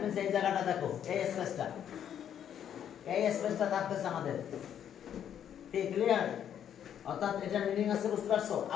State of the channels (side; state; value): right; quieter; 9.5 dB